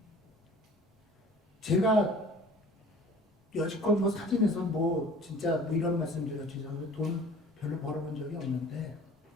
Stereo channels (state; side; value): normal; both; correlation 0.47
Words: 제가 여지껏 뭐 사진에서 뭐 진짜 뭐 이런 말씀 드렸죠. 돈 별로 벌어본 적이 없는데